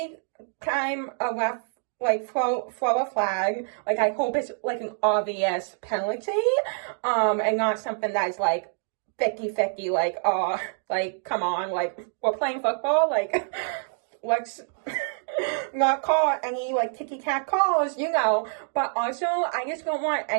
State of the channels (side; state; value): left; silent; digital silence